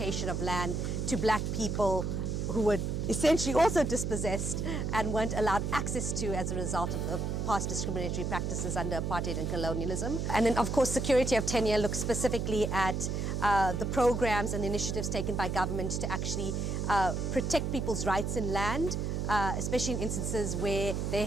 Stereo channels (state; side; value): noise; right; hum, 1 dB below the sound